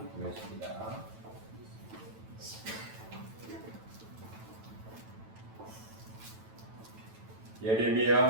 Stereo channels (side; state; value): left; late; 9.1 ms